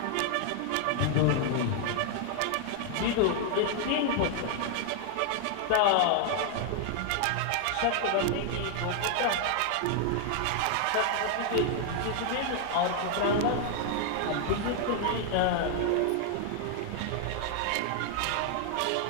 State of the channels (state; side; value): different; both; correlation 0.00